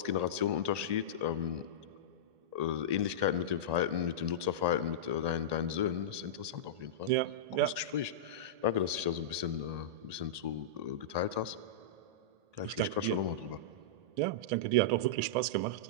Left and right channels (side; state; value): left; late; 1.8 ms